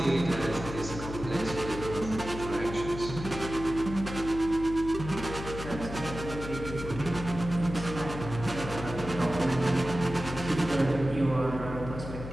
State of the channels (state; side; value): noise; left; hum, 9 dB below the sound